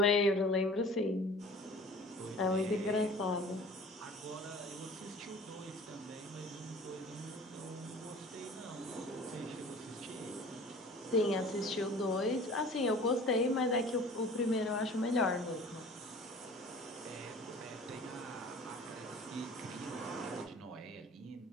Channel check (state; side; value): normal; both; correlation 0.45